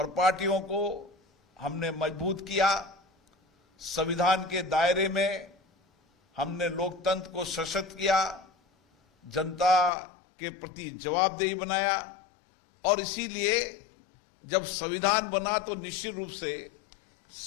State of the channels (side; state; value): right; drops out; at 9.9 s